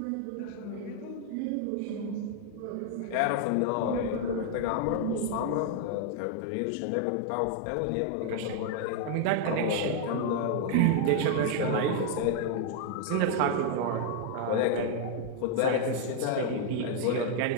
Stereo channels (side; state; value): both; different; correlation 0.00